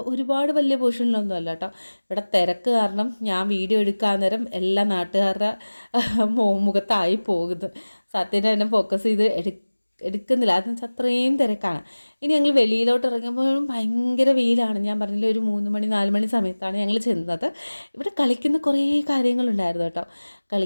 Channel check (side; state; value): both; inverted; correlation -1.00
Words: ഒരുപാട് വലിയ പോർഷനിലൊന്നും അല്ല കേട്ടോ. ഇവിടെ തിരക്ക് കാരണം ഞാൻ വീഡിയോ എടുക്കാൻ നേരം എല്ലാ നാട്ടുകാരുടെ മുഖത്തായി പോകുന്നു. സത്യനെ തന്നെ ഫോക്കസ് ചെയ്ത് എടുക്കുന്നില്ല, അതെന്ന് വെച്ചാൽ അത്രയും തിരക്കാണ്. ഇനി ഞങ്ങൾ വെളിയിലോട്ട് ഇറങ്ങുമ്പോഴും ഭയങ്കര വെയിലാണ്. ഞാൻ പറഞ്ഞില്ല, ഒരു 3 മണി 4 മണി സമയത്താണ് ഞങ്ങൾ ചെന്നത്. ഇവിടെ കളിക്കുന്ന കുറേ കാര്യങ്ങളുണ്ടായിരുന്നു കേട്ടോ.